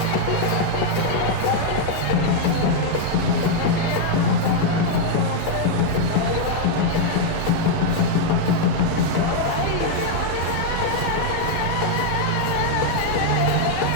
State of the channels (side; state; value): both; different; correlation 0.00